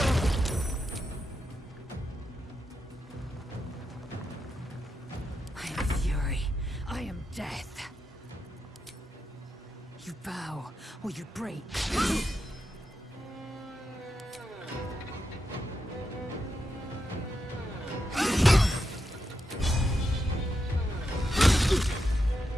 am fury. I am death. You bow, or you break.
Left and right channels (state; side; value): normal; both; correlation 0.86